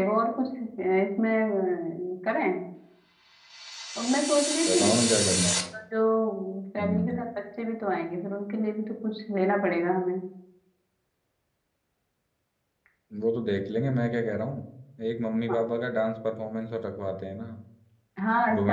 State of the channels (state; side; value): identical; both; correlation 1.00